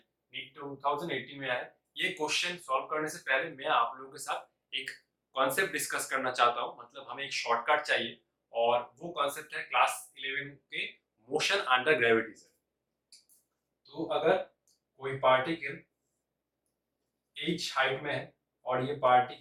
नीट 2018 में आया है। ये क्वेश्चन सॉल्व करने से पहले मैं आप लोगों के साथ एक कॉन्सेप्ट डिस्कस करना चाहता हूं, मतलब हमें एक शॉर्टकट चाहिए और वो कॉन्सेप्ट है क्लास 11 के मोशन अंडर ग्रेविटी से। तो अगर कोई पार्टिकल h हाइट में है और ये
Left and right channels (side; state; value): both; identical; correlation 1.00